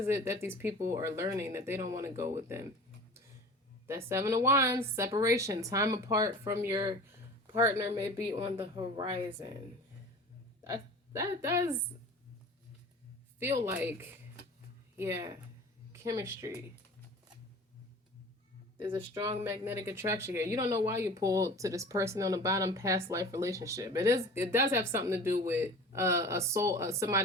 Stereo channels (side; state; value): both; normal; correlation 0.40